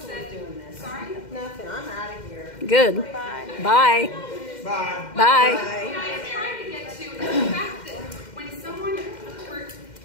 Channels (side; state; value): right; late; 2.1 ms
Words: said, sorry? Nothing, I'm out of here. Good. Bye. Bye. Bye. Bye. What I was trying to get to is the fact that when someone,